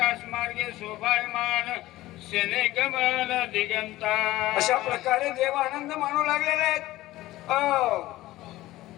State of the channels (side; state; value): right; quieter; 16.8 dB